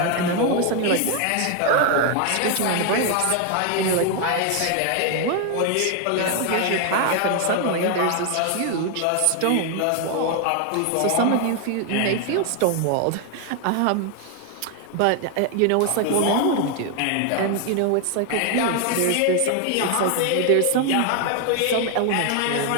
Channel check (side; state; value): both; different; correlation 0.00